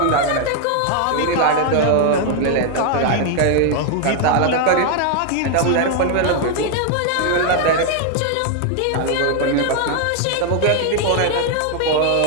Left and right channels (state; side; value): different; both; correlation 0.00